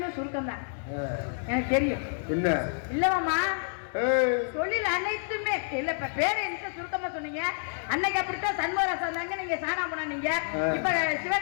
சுருக்கம் தான் எனக்கு தெரியும். என்ன இல்ல மாமா தொழில் அனைத்துமே இல்ல. இப்ப பேரை என்ன சுருக்கமா சொன்னீங்க. அன்னைக்கு அப்படித்தான் சண்முகராசா இருந்தாங்க, நீங்க சாணா போனீங்க. இப்ப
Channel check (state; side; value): silent; right; digital silence